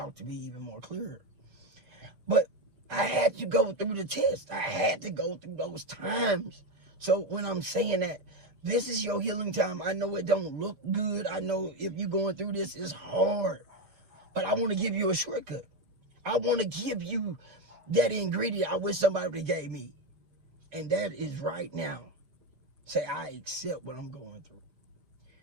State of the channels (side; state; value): left; late; 5.6 ms